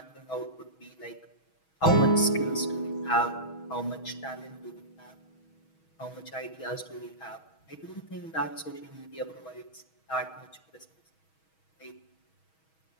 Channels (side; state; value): right; late; 6.3 ms